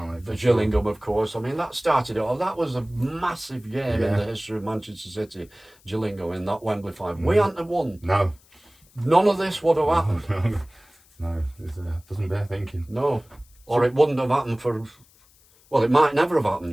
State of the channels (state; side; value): noise; left; hiss, 30 dB below the sound